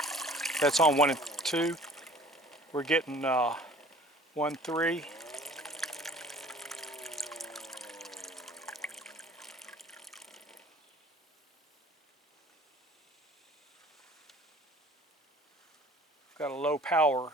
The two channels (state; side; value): normal; both; correlation 0.50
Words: That's on 1 and 2. We're getting 1, 3. Got a low power